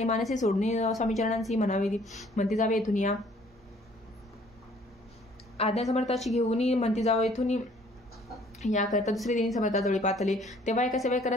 मानसी सोडणे स्वामीचरणांशी म्हणावे म्हणती जावे येथून या आज्ञा समर्थाची घेऊन म्हणती जावं येथून याकरता दुसरे दिनी समर्थाजवळी पातले तेव्हा एका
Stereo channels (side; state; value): both; normal; correlation 0.58